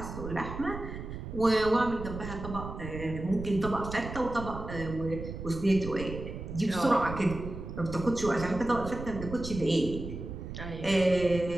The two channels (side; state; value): right; noise; rumble, 8 dB below the sound